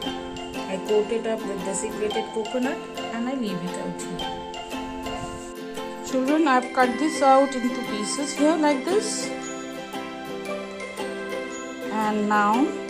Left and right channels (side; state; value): both; identical; correlation 1.00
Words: I coat it up with desiccated coconut and I leave it out here. Children, I have cut this out into pieces here like this. And now